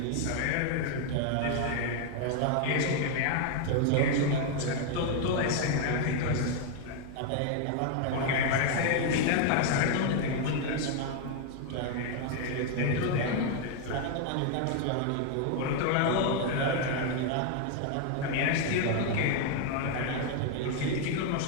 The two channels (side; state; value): both; different; correlation 0.00